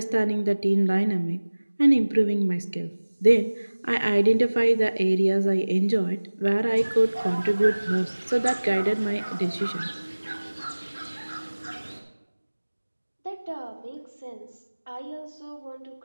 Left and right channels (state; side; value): inverted; both; correlation -1.00